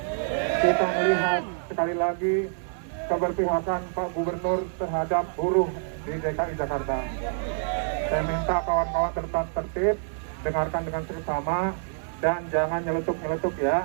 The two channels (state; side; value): silent; left; digital silence